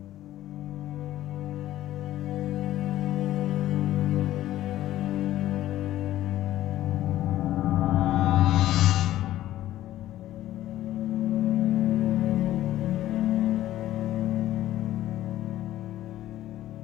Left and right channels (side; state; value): right; quieter; 13.9 dB